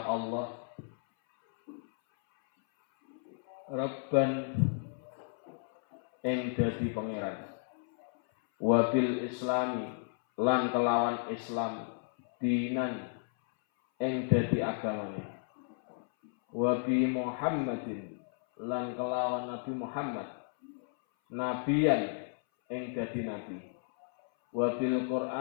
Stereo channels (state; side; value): silent; right; 56 dB below the other